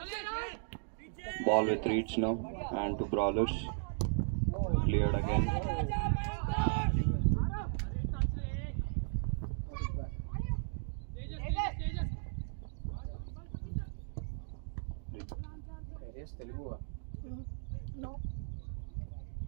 Ball with Reeds now. And to Brawlers. Cleared again. Telugu No.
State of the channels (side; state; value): left; silent; digital silence